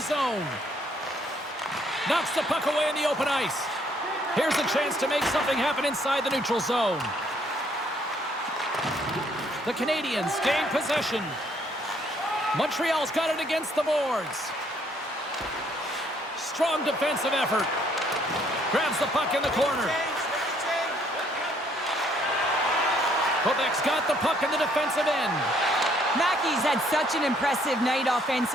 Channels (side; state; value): both; normal; correlation 0.66